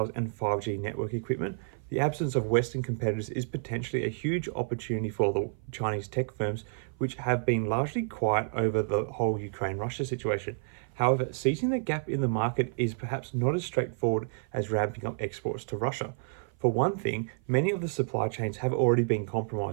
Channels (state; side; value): silent; left; 55 dB below the other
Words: and 5G network equipment. The absence of Western competitors is potentially a huge opportunity for the Chinese tech firms, which have been largely quiet over the whole Ukraine-Russia situation. However, seizing the gap in the market is perhaps not as straightforward as ramping up exports to Russia. For one thing, many of the supply chains have already been